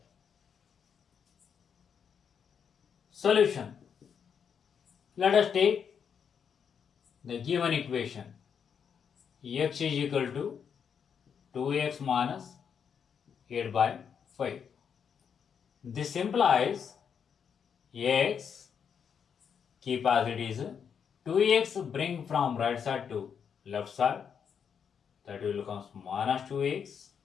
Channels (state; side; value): quieter; right; 7.2 dB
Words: Solution. Let us take the given equation. X is equal to 2x minus 8 by 5. This implies x, keep as it is, 2x bring from right side to left side, that will become minus 2x